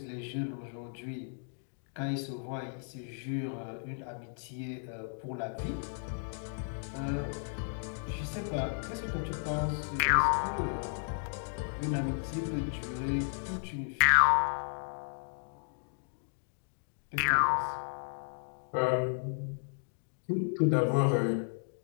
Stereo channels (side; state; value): right; silent; digital silence